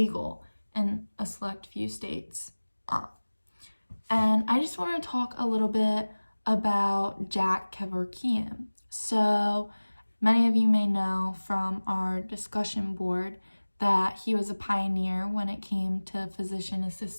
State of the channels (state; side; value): inverted; both; correlation -1.00